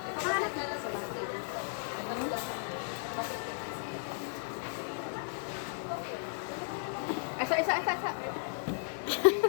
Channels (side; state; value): right; silent; digital silence